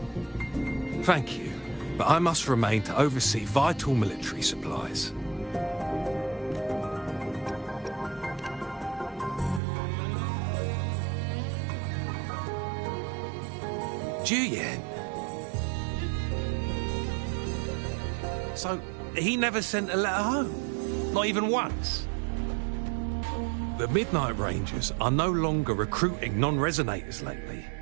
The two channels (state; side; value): drops out; left; at 9.6 s